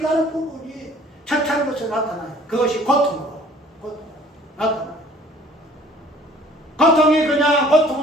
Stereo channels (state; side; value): normal; both; correlation 0.53